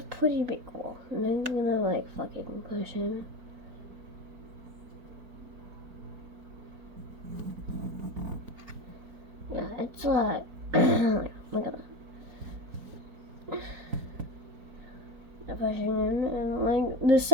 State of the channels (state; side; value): late; left; 4.4 ms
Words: pretty big wall, and I'm gonna like fucking push in. Yeah, it's like look at that. Pushing in, and like the